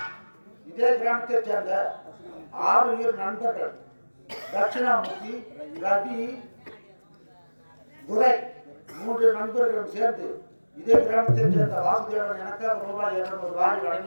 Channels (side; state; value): both; inverted; correlation -1.00